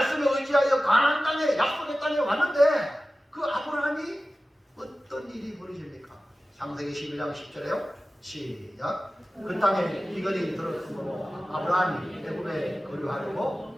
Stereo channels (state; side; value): normal; both; correlation 0.95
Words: 의지하여 가나안 땅에, 약속의 땅에 왔는데, 그 아브라함이 어떤 일이 벌어집니까? 창세기 11장 10절에요. 시작. 그 땅에 비걸이 들었으므로 아브라함이 애굽에